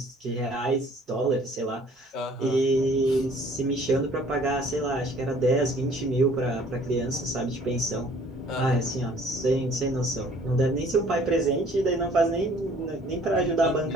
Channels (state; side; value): normal; both; correlation 0.55